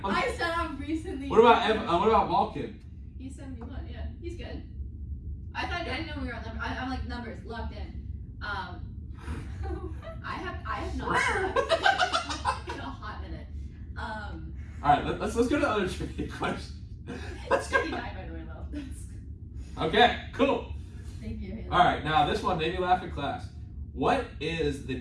on. I said I'm recently. What about Malkin? He's 71. Yeah, he's good. I didn't know we were on numbers. I'm like numbers locked in. I have not slept in a hot minute. All right, let's go to the other trivia question. It's 59 by the way, though. Okay, cool. Thank you, Hailey. All right, now this one made me laugh in class. What is the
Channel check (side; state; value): both; identical; correlation 1.00